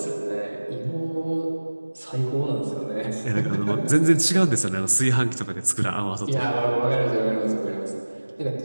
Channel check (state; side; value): inverted; both; correlation -1.00